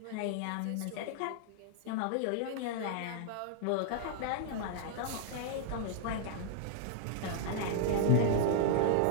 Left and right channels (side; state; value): both; different; correlation -0.01